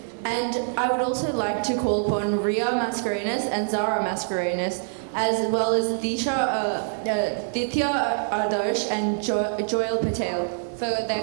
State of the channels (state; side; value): silent; left; digital silence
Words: And I would also like to call upon Ria Mascarenas and Zara Mascarenas, as well as Ditya Adarsh and Joel Patel for their